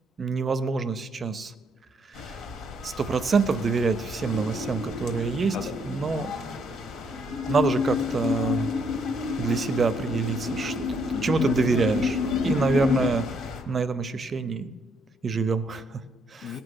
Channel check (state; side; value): normal; both; correlation 0.71